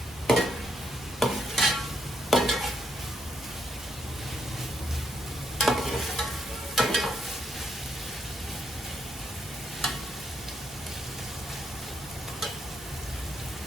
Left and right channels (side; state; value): both; normal; correlation 0.76